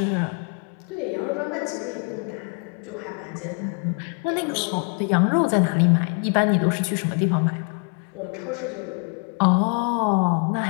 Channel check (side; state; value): right; quieter; 37.9 dB